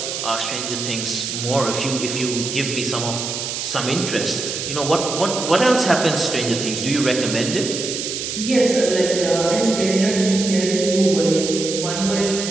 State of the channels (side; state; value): right; noise; hiss, 4 dB below the sound